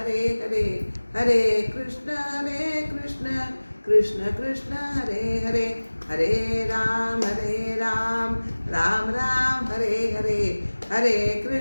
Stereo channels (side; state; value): both; inverted; correlation -1.00